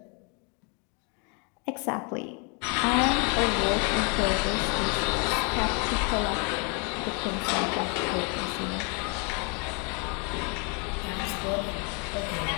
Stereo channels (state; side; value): quieter; right; 35.1 dB